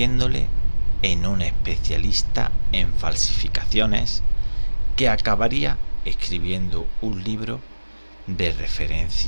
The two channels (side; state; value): both; inverted; correlation -1.00